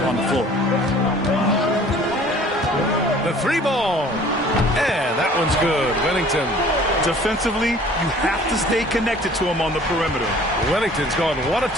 on the floor. The three ball. And that one's good. Wennington. Defensively, you have to stay connected to him on the perimeter. Wennington's gone 1 of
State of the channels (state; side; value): normal; both; correlation 0.51